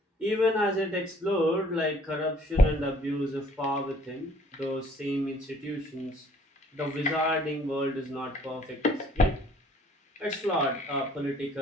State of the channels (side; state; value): both; normal; correlation 0.58